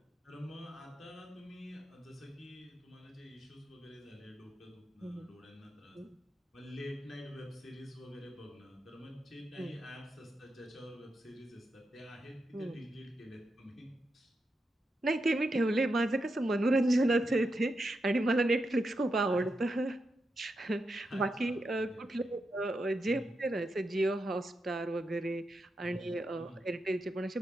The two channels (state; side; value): normal; both; correlation 0.86